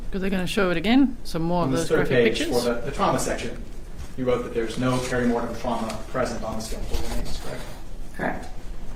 because they're going to show it again. Some more On of this those third graphic page, pictures. for the trauma section, you wrote that there's no perimortem trauma present on the skeletal remains, correct? Correct.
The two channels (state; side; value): identical; both; correlation 1.00